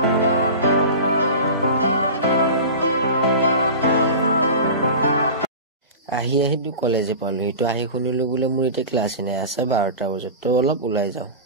আহি দু কলেজে পালো এটো আহি শুনিলো বুলে মোৰ এতে ক্লাছ নাই আছে 12টা বজাত তো অলপ উলাই যাও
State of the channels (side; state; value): both; inverted; correlation -0.32